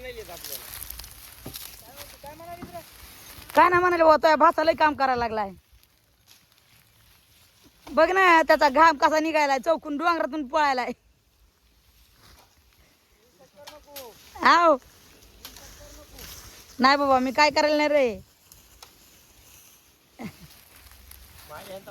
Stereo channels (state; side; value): identical; both; correlation 1.00